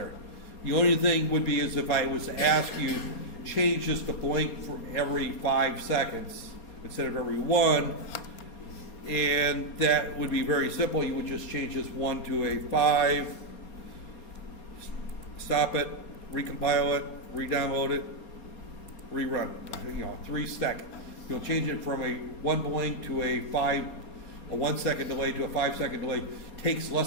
The only thing would be is if I was to ask you, change this to blink for every 5 seconds instead of every 1, and that would be very simple. You would just change this 1 to a 5, stop it, recompile it, re-download it, rerun it. 3 seconds. you'll change it from a 1 blink to a 1 second delay to a 5 second delay takes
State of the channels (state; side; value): late; right; 4.3 ms